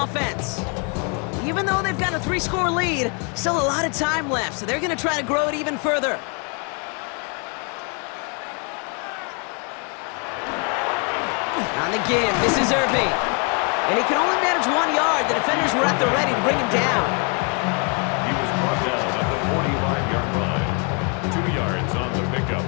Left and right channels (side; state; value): right; quieter; 35.8 dB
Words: Even though they've got a 3-score lead, still a lot of time left, so they're going to try to grow it even further. On the give, this is Irving. And he can only manage 1 yard. The defenders were at the ready to bring him down. He was brought down at the 45-yard line. 2 yards on the pickup.